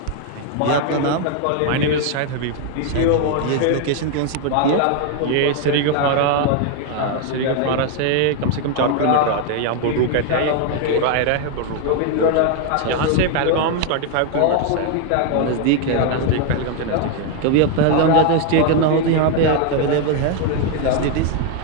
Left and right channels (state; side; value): different; both; correlation 0.01